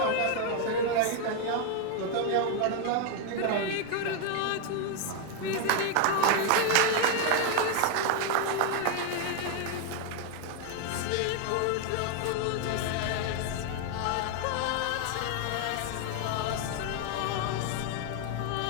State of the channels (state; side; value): different; both; correlation 0.01